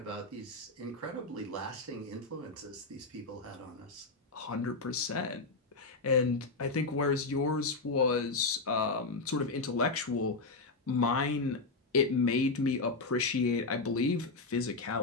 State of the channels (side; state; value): right; quieter; 3.6 dB